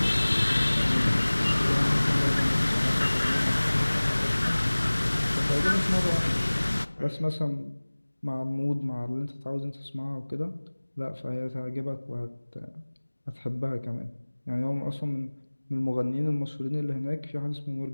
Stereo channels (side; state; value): both; inverted; correlation -1.00